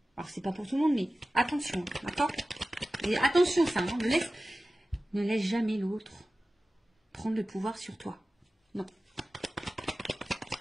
Alors, c'est pas pour tout le monde, mais attention, d'accord? Et attention, ça, hein, ne laisse jamais l'autre prendre le pouvoir sur toi. Non.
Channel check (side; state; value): both; normal; correlation 0.96